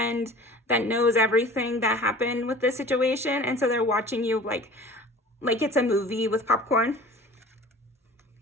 that knows everything that happened with this situation. And so they're watching you like it's a movie with popcorn.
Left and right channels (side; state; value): both; normal; correlation 0.43